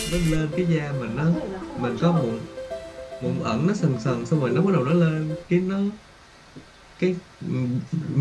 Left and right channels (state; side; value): identical; both; correlation 1.00